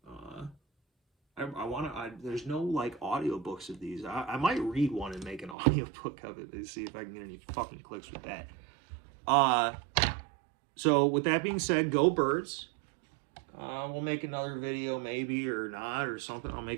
There's no like audiobooks of these. I might read one and make an audiobook of it and see if I can get any fucking clicks with that. So with that being said, go birds. We'll make another video maybe or not or something. I'll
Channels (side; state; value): left; drops out; at 5.6 s